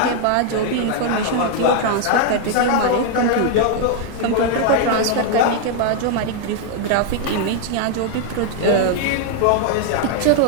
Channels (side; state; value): both; different; correlation 0.00